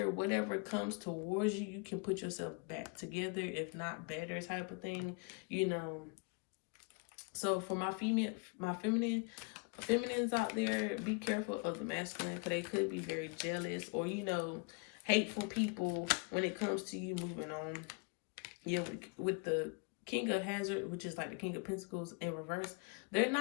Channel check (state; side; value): quieter; right; 34.0 dB